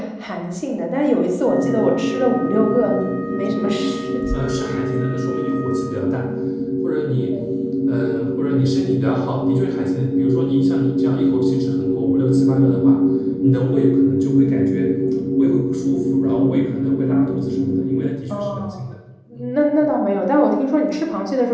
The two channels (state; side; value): identical; both; correlation 1.00